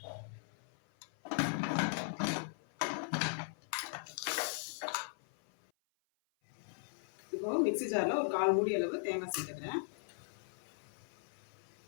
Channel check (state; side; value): silent; right; 52 dB below the other